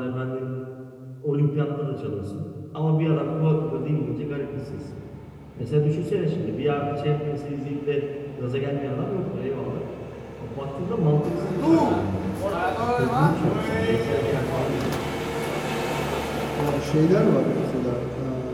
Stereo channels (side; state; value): both; identical; correlation 1.00